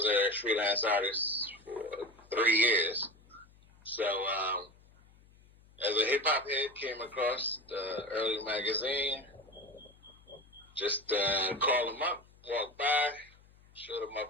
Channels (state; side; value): noise; left; hum, 27 dB below the sound